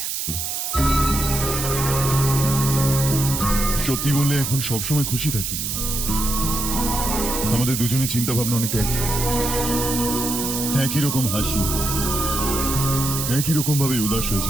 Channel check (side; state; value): right; noise; hiss, 3 dB below the sound